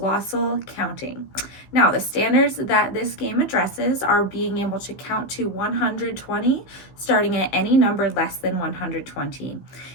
Counting. Now, the standards that this game addresses are being able to count to 120, starting at any number less than 120.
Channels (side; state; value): right; late; 15 ms